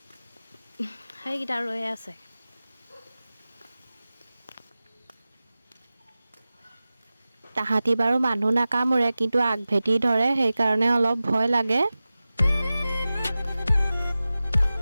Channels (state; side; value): inverted; both; correlation -0.96